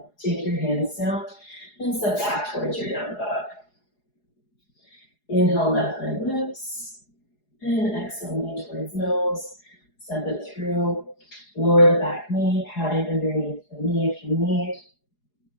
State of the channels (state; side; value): late; right; 4.8 ms